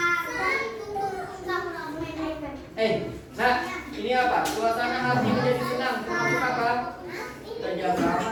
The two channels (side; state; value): both; identical; correlation 1.00